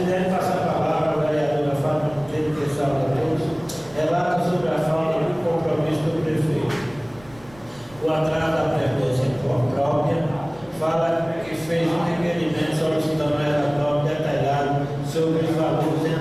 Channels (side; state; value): right; noise; rumble, 24 dB below the sound